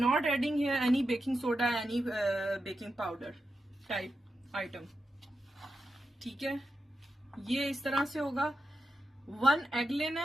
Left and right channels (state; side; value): normal; both; correlation 0.88